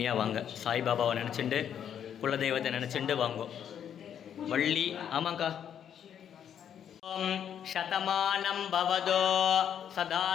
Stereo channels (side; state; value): right; quieter; 9.0 dB